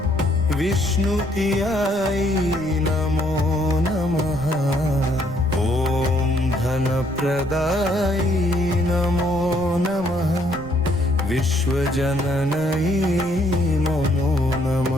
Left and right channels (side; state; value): right; noise; rumble, 16 dB below the sound